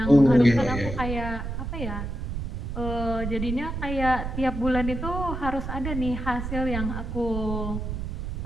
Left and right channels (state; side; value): noise; right; rumble, 4 dB below the sound